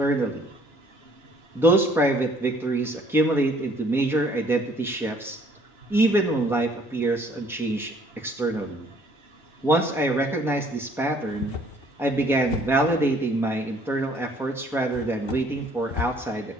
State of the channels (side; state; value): both; normal; correlation 0.59